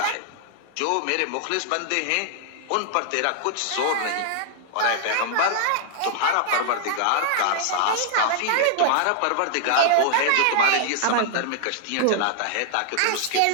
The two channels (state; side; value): different; both; correlation -0.01